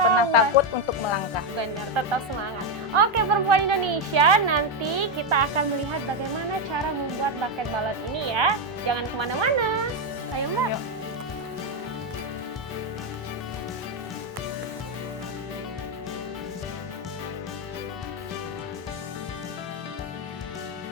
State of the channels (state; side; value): normal; both; correlation 0.05